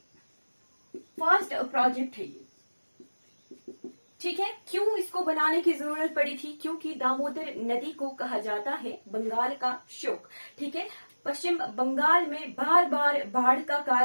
फर्स्ट प्रोजेक्ट है ये। ठीक है, क्यों इसको बनाने की जरूरत पड़ी थी? क्योंकि दामोदर नदी को कहा जाता है बंगाल का शोक। ठीक है, पश्चिम बंगाल में बार बार बाढ़ का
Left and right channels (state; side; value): inverted; both; correlation -1.00